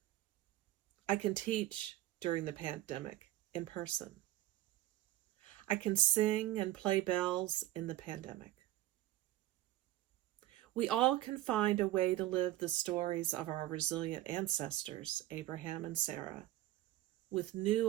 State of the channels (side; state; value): left; quieter; 15.2 dB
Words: I can teach during the pandemic in person. I can sing and play bells in the pandemic. We all can find a way to live the stories of our resilient ancestors, Abraham and Sarah, with